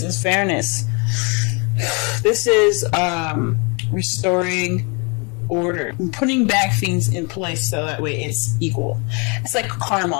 is fairness, this is restoring order, putting back things in place so that way it's equal. It's like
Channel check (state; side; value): quieter; right; 32.5 dB